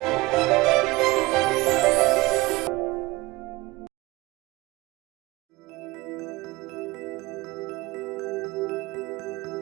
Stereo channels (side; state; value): left; quieter; 21.3 dB